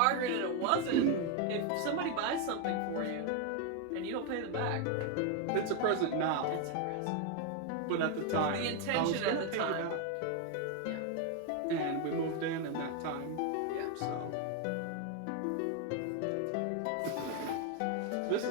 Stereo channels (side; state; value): both; different; correlation 0.01